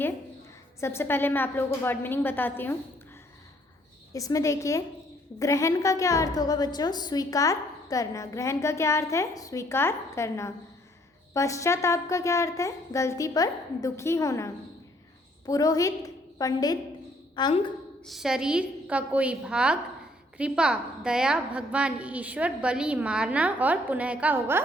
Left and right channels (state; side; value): normal; both; correlation 0.64